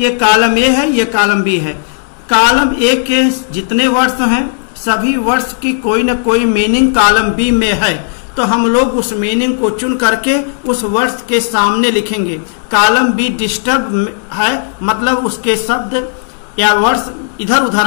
कॉलम ए है, ये कॉलम बी है। कॉलम ए के जितने वर्ड्स हैं सभी वर्ड्स की कोई न कोई मीनिंग कॉलम बी में है, तो हम लोग उस मीनिंग को चुन करके उस वर्ड्स के सामने लिखेंगे। कॉलम बी डिस्टर्ब है, मतलब उसके शब्द या वर्ड्स इधर उधर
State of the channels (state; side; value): silent; right; digital silence